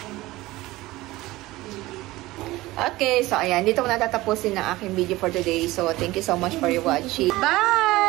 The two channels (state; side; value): quieter; left; 18.7 dB